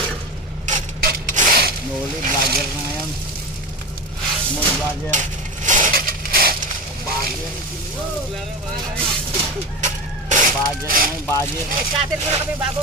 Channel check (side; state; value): both; normal; correlation 0.24